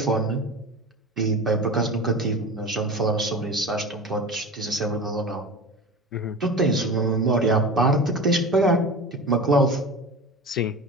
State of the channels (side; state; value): both; normal; correlation 0.31